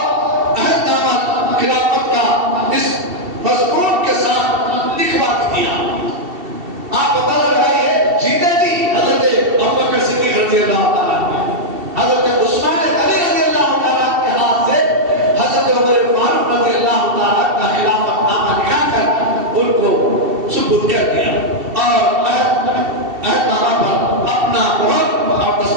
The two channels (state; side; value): late; left; 2.7 ms